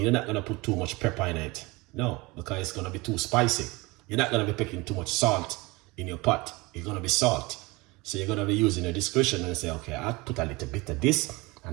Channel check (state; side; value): quieter; left; 23.8 dB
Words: You're not going to put too much pepper in it. No, because it's going to be too spicy. You're not going to be putting too much salt in your pot. It's going to be salt. So you're going to be using your discretion and say, okay, I'll put a little bit of this